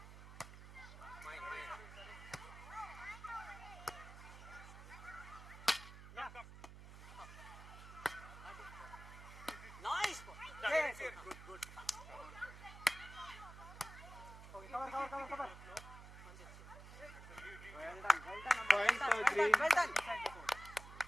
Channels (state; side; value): noise; right; hum, 14 dB below the sound